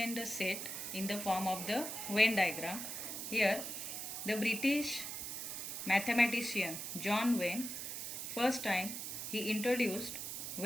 the set in the form of the Venn diagram. Here the British mathematician John Venn, first time he introduced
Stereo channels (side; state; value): right; noise; hiss, 5 dB below the sound